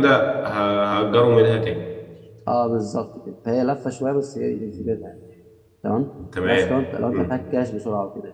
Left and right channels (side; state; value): both; identical; correlation 1.00